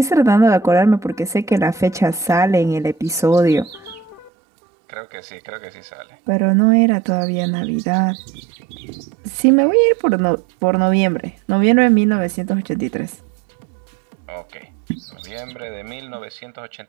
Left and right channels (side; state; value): left; drops out; at 4.3 s